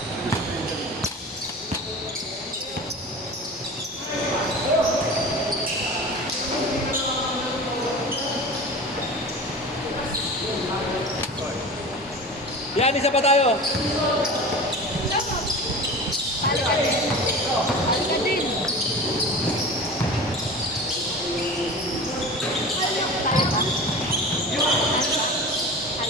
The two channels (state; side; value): normal; both; correlation 0.34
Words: Yan, isa pa tayo.